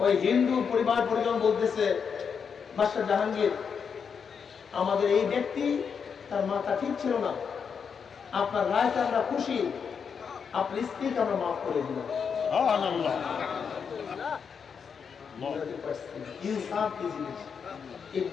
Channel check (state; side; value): quieter; right; 6.5 dB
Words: ওই হিন্দু পরিবার পরিজন বলতেছে, বাদশাহ জাহাঙ্গীর, আমাদের এই ব্যক্তি তার মাথা ঠিক ছিল না, আপনার রায়তে আমরা খুশি, আপনার স্ত্রীকে আমরা মাফ করে দিলাম। ইনসাফ কি জিনিস? এই